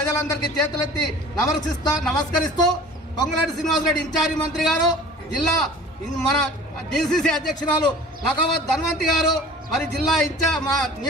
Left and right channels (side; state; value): both; normal; correlation 0.44